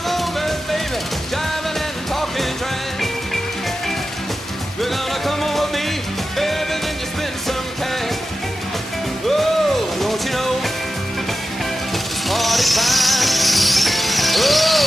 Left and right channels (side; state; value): both; normal; correlation 0.92